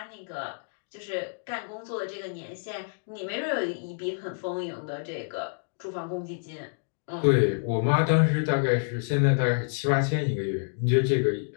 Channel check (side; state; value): right; silent; digital silence